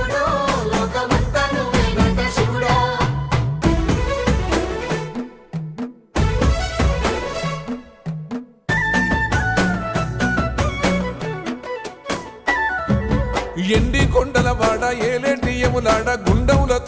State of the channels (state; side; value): identical; both; correlation 1.00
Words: ఎండి కొండల వాడ ఏలేటి యములాడ